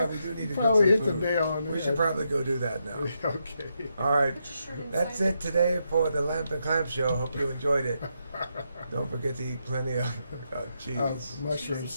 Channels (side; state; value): both; inverted; correlation -0.82